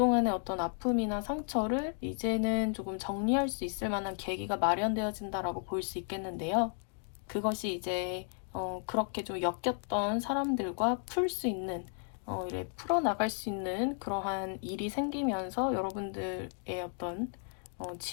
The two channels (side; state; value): right; silent; 55 dB below the other